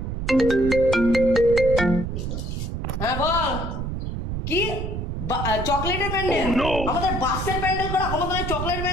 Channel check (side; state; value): right; noise; rumble, 4 dB below the sound